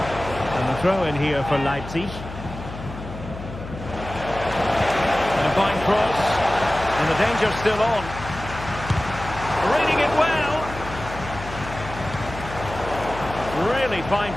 And the throw in here for Leipzig. And a fine cross. And the danger's still on. Reading it well. Really fine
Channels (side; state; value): left; noise; hum, 11 dB below the sound